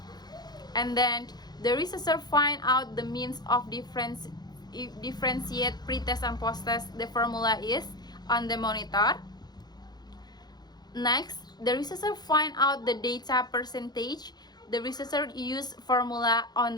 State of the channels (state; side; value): late; right; 0.20 ms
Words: And then the researcher find out the means of differentiate pre-test and post-test. The formula is on the monitor. Next, the researcher find out the data percentage. The researcher use formula on